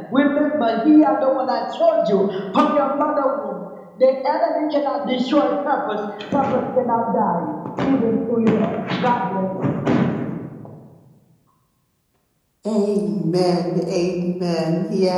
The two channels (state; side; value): identical; both; correlation 1.00